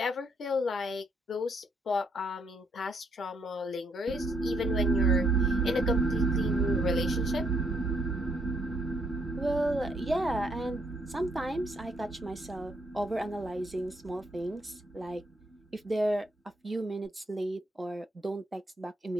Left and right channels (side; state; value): both; normal; correlation 0.72